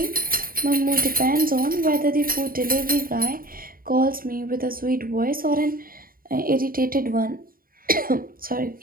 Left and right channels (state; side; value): late; left; 0.42 ms